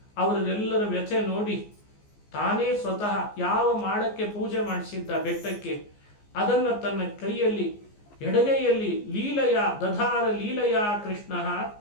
ಅವರೆಲ್ಲರ ವ್ಯಥೆ ನೋಡಿ ತಾನೇ ಸ್ವತಃ ಯಾವ ಮಾಡಕ್ಕೆ ಪೂಜೆ ಮಾಡಿಸಿದ್ದ ಬೆಟ್ಟಕ್ಕೆ ಅದನ್ನ ತನ್ನ ಕೈಯಲ್ಲಿ ಎಡಗೈಯಲ್ಲಿ ಲೀಲಯ ದಧಾರ ಲೀಲಯ ಕೃಷ್ಣ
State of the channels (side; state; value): right; late; 14 ms